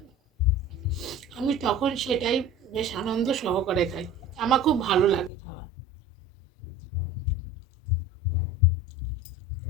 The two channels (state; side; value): drops out; right; at 5.3 s